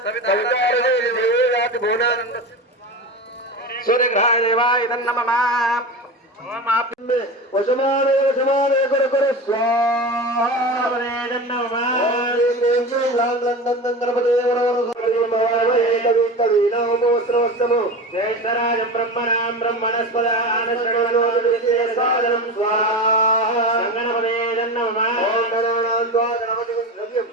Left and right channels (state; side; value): normal; both; correlation 0.27